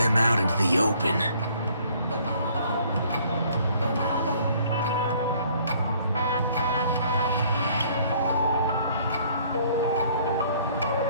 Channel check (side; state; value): both; inverted; correlation -0.59